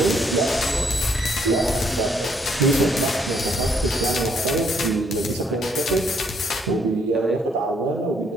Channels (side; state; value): both; normal; correlation 0.69